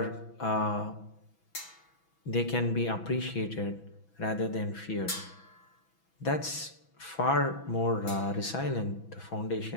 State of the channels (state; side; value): late; right; 6.1 ms